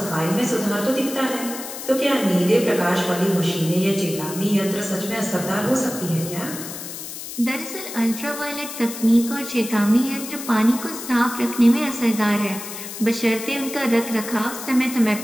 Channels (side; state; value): left; noise; hiss, 10 dB below the sound